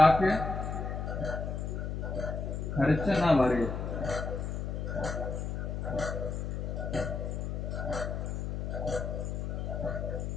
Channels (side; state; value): left; noise; hum, 3 dB below the sound